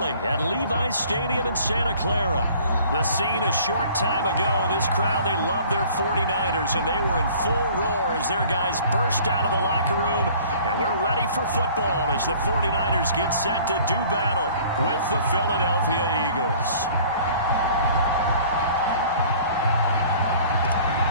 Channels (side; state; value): both; inverted; correlation -0.51